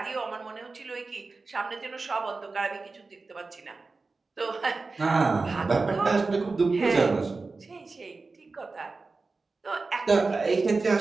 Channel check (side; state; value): left; quieter; 3.9 dB